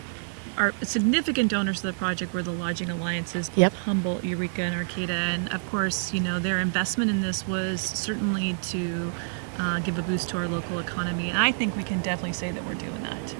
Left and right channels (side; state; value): left; silent; 59 dB below the other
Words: significant donors to the project were the lodging alliances, both Humboldt, Eureka, and Arcata. And of course, their investment in this was certainly to give a boost to our local economy. And I think we can definitely say that we're doing that.